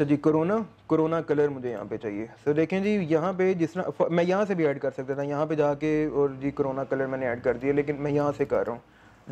जी, कोरोना कलर मुझे यहाँ पे चाहिए। तो देखें जी यहाँ पे जिस तरह मैं यहाँ से भी ऐड कर सकता था, यहाँ पे जाके और जी कोरोना कलर मैंने ऐड कर दिया, लेकिन मैं यहाँ से कर रहा हूँ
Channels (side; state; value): both; identical; correlation 1.00